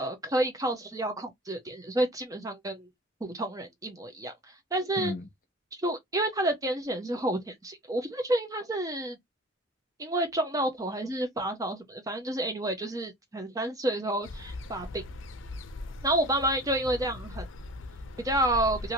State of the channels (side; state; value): both; normal; correlation 0.42